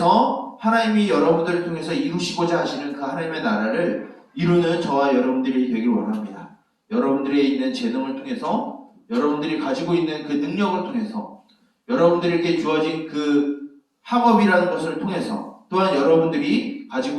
하나님이 여러분들을 통해서 이루시고자 하시는 그 하나님의 나라를 이루는 저와 여러분들이 되길 원합니다. 여러분들이 있는 재능을 통해서, 여러분들이 가지고 있는 그 능력을 통해서, 여러분들에게 주어진 그 학업이라는 것을 통해서, 또한 여러분들이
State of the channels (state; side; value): identical; both; correlation 1.00